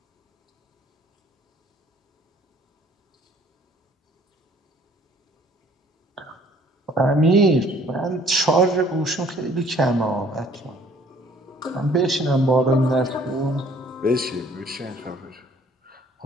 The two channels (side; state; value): both; normal; correlation 0.58